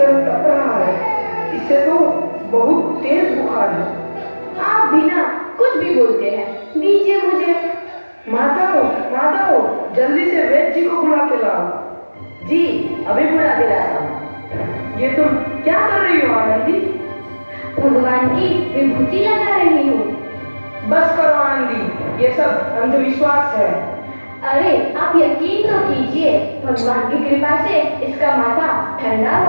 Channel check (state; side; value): inverted; both; correlation -1.00